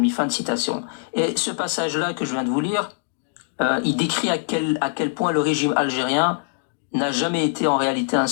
fin de citation. Et ce passage-là que je viens de vous lire, il décrit à quel point le régime algérien n'a jamais été en réalité un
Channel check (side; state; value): right; silent; digital silence